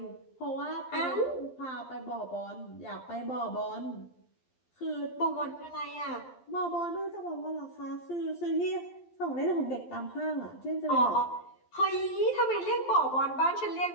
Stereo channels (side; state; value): right; late; 12 ms